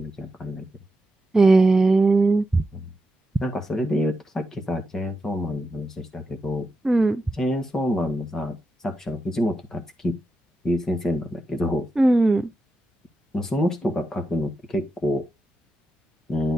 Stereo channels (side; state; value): both; normal; correlation 0.88